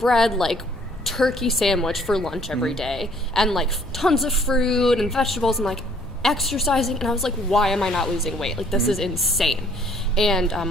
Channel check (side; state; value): both; normal; correlation 0.60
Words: like turkey sandwich for lunch every day, and like tons of fruit and vegetables, and like exercising, and I was like, why am I not losing weight? Like this is insane. And